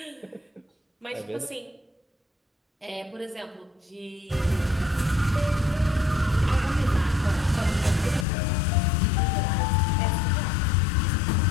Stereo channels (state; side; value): drops out; right; at 8.2 s